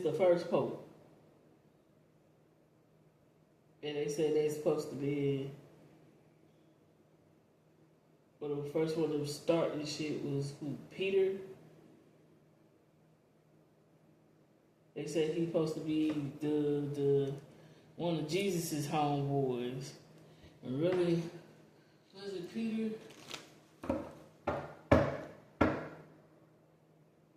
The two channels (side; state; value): both; identical; correlation 1.00